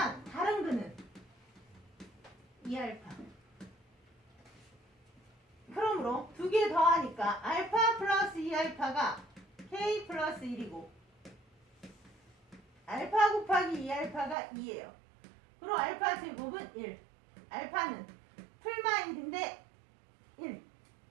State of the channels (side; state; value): left; drops out; at 14.4 s